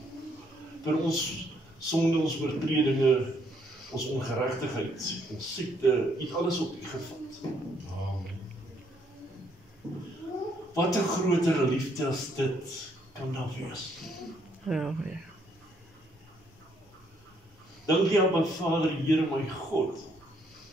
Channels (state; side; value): normal; both; correlation 0.70